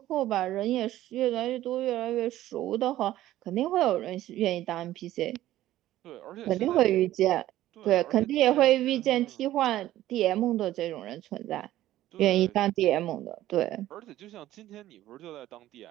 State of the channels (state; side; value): quieter; left; 14.3 dB